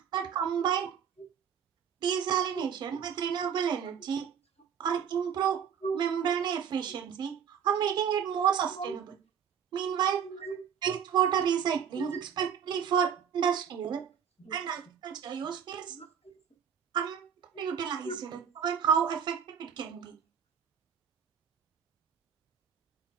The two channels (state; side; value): quieter; left; 7.9 dB